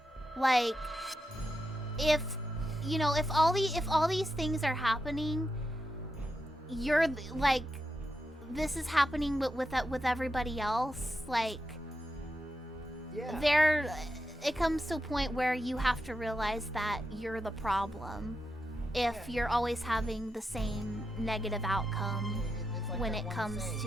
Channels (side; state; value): both; normal; correlation 0.86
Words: Like, if all these things are happening, you're like, this is happening with everybody else. Like, Yeah. It comes to a point where you have to realize that you're the problem if you're always having the same negative outcome It's like when that it one comes saying,